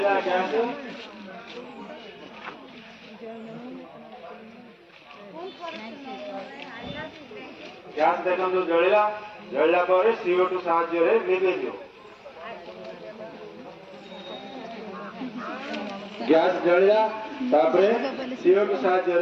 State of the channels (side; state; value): both; identical; correlation 1.00